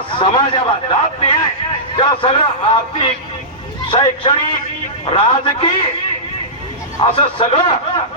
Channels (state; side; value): normal; both; correlation -0.17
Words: समाजाला जात निहाय त्या सगळं आर्थिक, शैक्षणिक, राजकीय असं